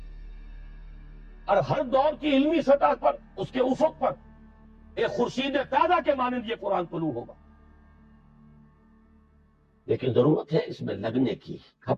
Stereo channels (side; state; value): both; identical; correlation 1.00